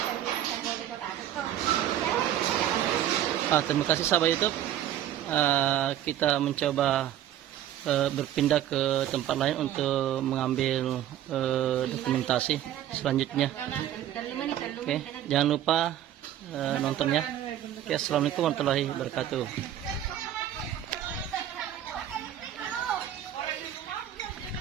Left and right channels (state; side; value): quieter; left; 11.6 dB